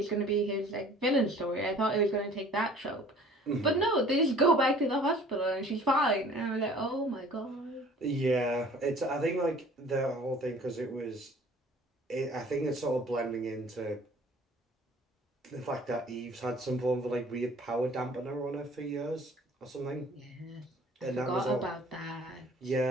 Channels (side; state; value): both; normal; correlation 0.51